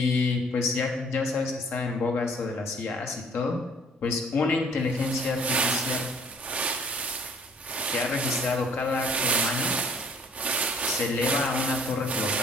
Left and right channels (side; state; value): both; normal; correlation 0.58